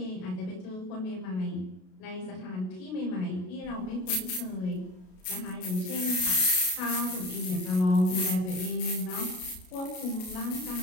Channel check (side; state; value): right; late; 33 ms